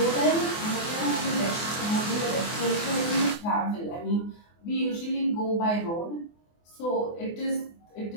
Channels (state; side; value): late; right; 24 ms